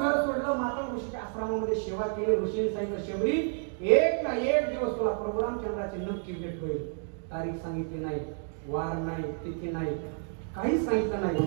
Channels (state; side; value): silent; left; 58 dB below the other